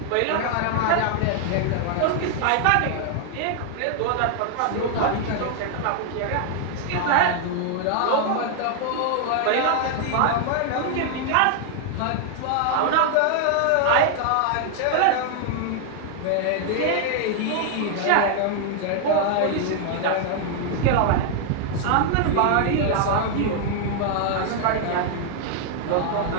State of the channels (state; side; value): different; both; correlation 0.00